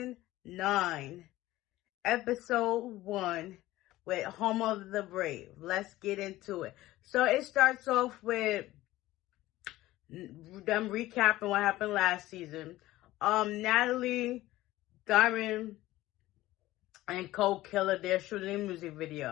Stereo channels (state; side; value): quieter; right; 16.6 dB